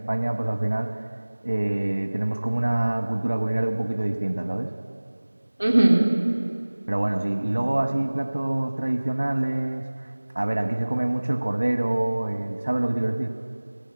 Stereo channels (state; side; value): inverted; both; correlation -1.00